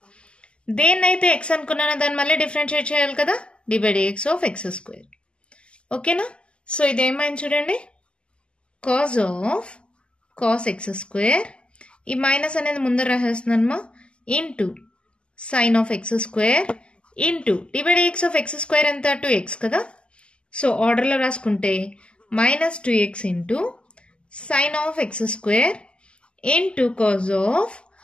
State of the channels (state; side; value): late; right; 0.052 ms